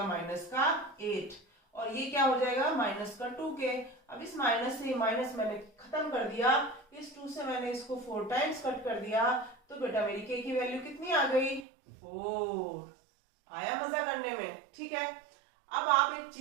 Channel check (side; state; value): left; drops out; at 11.7 s